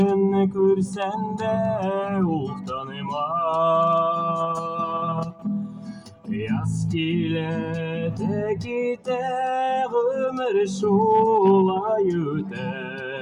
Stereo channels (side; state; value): both; identical; correlation 1.00